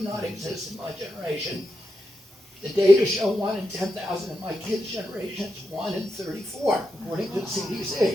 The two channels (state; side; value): normal; both; correlation 0.87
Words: not exist in my generation. The data show 1 in 10,000. In my kids' generation, it's 1 in 34, according to the